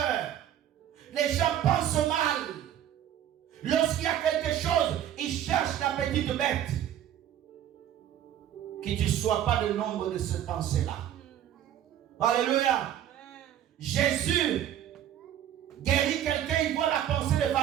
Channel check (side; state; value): left; quieter; 11.0 dB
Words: Les gens pensent mal. Lorsqu'il y a quelque chose, ils cherchent la petite bête. Que tu ne sois pas le nombre de ces pensées-là. Alléluia. Jésus guérit quelqu'un, il voit la pensée des